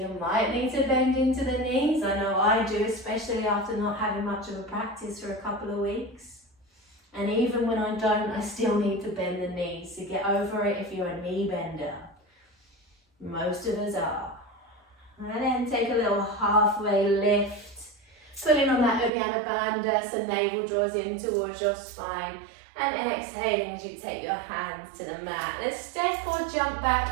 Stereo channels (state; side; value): drops out; left; at 19.1 s